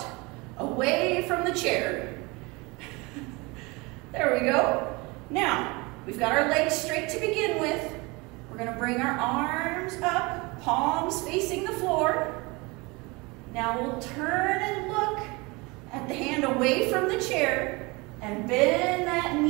away from the chair. There we go. Now, we've got our legs straight to begin with. We're We're going to bring our arms up, palms facing the floor. Now we'll turn and look at the hand away from the chair and bend that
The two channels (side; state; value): left; quieter; 25.6 dB